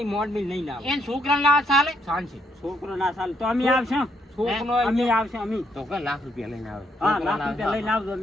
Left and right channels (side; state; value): both; normal; correlation 0.73